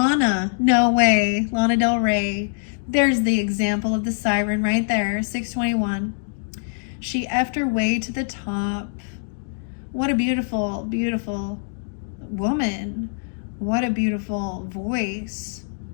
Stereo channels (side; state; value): right; silent; digital silence